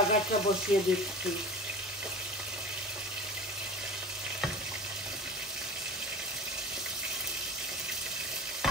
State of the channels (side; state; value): both; normal; correlation 0.34